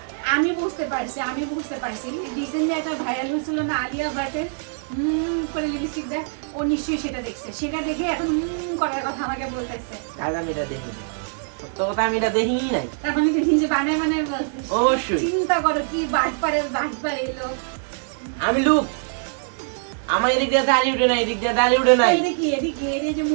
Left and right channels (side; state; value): left; silent; 63 dB below the other